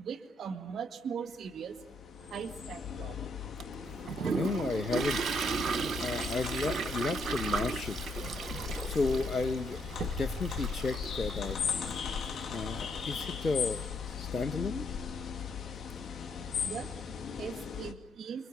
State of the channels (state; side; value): normal; both; correlation 0.73